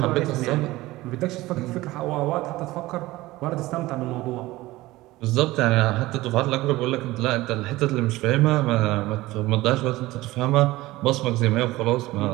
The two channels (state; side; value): quieter; left; 18.5 dB